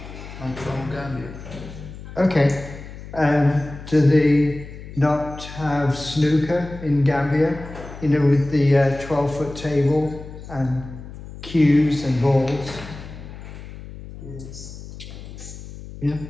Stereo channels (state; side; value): noise; left; hum, 13 dB below the sound